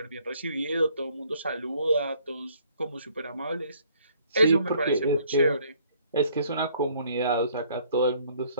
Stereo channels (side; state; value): both; inverted; correlation -0.63